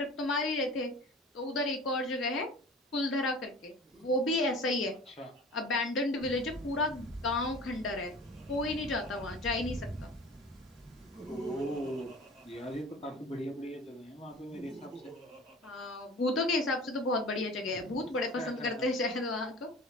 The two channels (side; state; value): both; normal; correlation 0.40